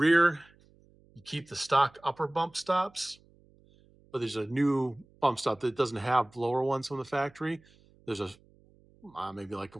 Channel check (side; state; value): right; noise; hum, 29 dB below the sound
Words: you keep the stock upper bump stops, but there's a new bump stop that doesn't have lower ones from the factory. There's a maybe like a